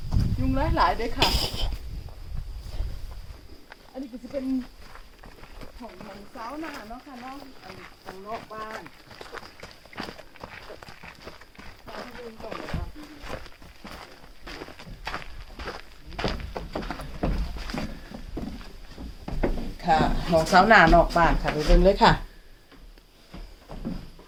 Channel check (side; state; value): both; identical; correlation 1.00